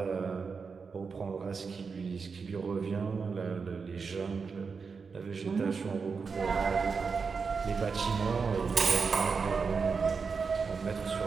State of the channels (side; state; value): left; quieter; 5.2 dB